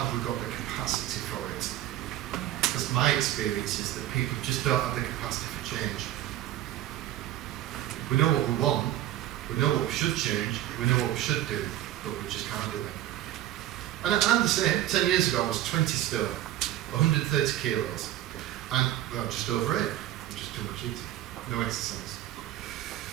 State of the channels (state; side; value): quieter; left; 13.8 dB